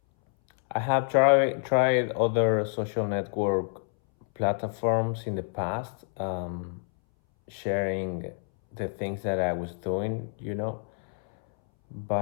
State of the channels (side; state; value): right; silent; 60 dB below the other